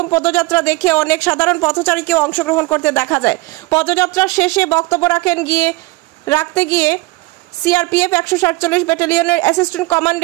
পদযাত্রা দেখে অনেক সাধারণ পথচারীকেও অংশগ্রহণ করতে দেখা যায়। পদযাত্রার শেষে বক্তব্য রাখতে গিয়ে CRPF 147 ব্যাটালিয়নের assistant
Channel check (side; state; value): left; quieter; 22.6 dB